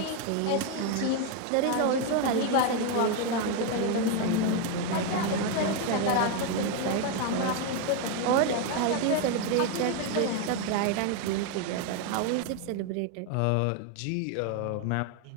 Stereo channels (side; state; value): both; different; correlation 0.01